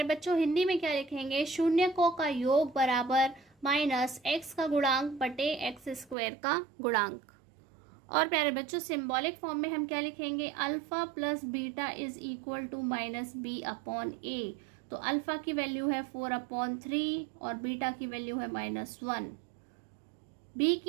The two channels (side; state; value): left; drops out; at 6.2 s